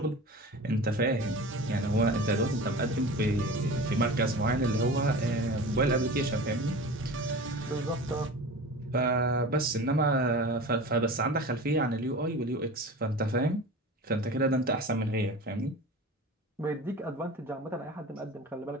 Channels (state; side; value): normal; both; correlation 0.35